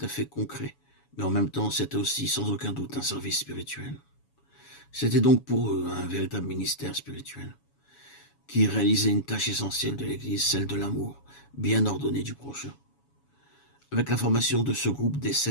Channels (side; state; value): right; late; 7.1 ms